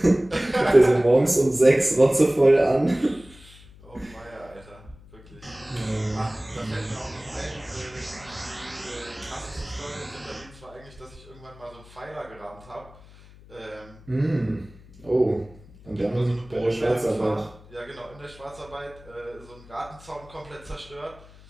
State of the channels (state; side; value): noise; left; hum, 22 dB below the sound